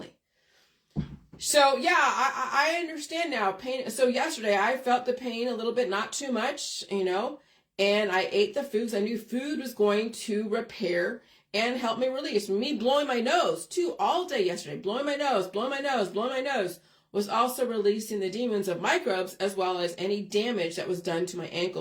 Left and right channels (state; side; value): identical; both; correlation 1.00